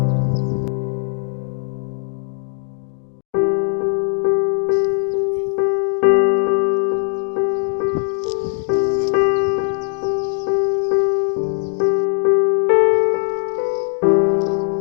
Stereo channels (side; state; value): right; silent; digital silence